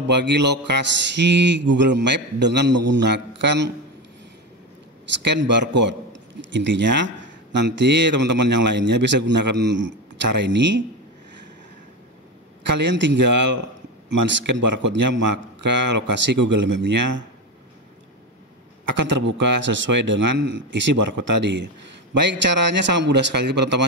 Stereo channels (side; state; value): both; normal; correlation 0.19